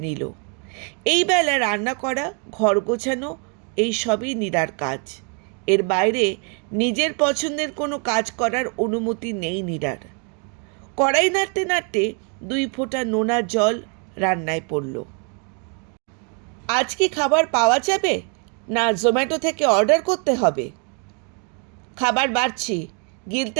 নিল। এই বেলা রান্না করা, ঘর গোছানো, এই সবই নীরার কাজ। এর বাইরে নিজের পছন্দের কোনো কাজ করার অনুমতি নেই নীরার। কড়াই নাড়তে নাড়তে 2 ফোঁটা নোনা জল রান্নায় পড়ল। আজ কি খাবার পাওয়া যাবে, না জোম্যাটো থেকে অর্ডার করতে হবে? খাবার বাড়ছি,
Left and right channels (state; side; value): quieter; left; 38.2 dB